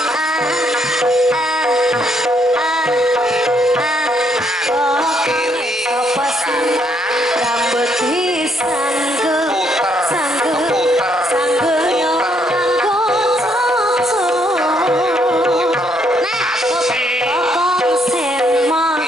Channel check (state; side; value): normal; both; correlation 0.71